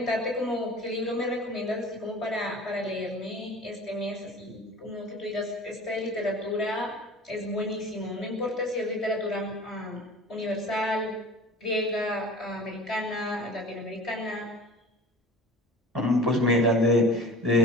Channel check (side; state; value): both; normal; correlation 0.41